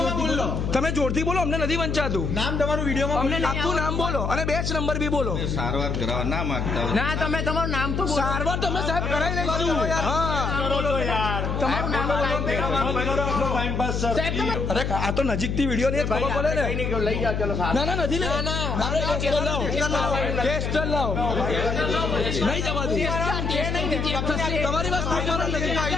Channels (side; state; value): left; noise; hum, 1 dB below the sound